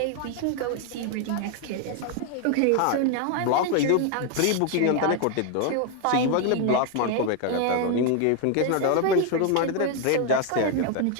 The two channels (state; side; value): different; both; correlation 0.01